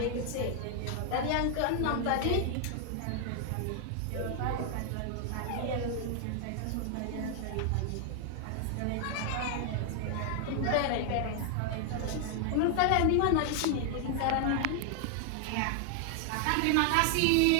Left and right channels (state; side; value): different; both; correlation 0.00